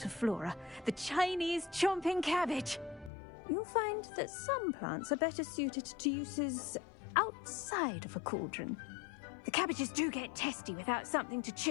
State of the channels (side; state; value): right; drops out; at 3.1 s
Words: of flora, the Chinese chomping cabbage. You'll find that some plants are better suited to uses outside of a cauldron. The cabbages do get testy without something to